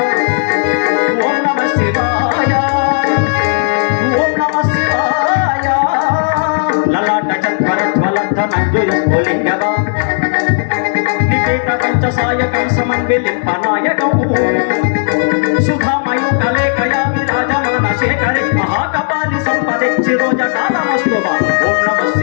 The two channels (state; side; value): silent; right; digital silence